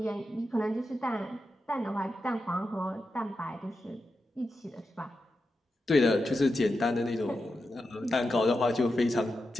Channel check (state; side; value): normal; both; correlation 0.89